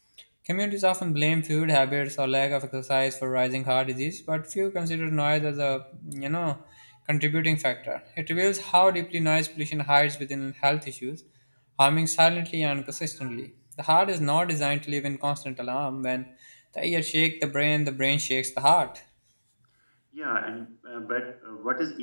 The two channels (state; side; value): inverted; both; correlation -1.00